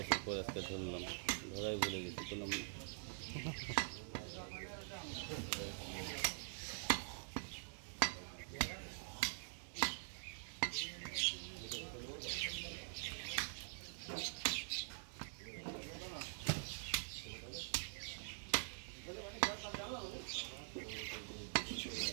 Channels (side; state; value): left; silent; digital silence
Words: পর আজকে ধরলাম, ধরাই বলে গেছি কোনো।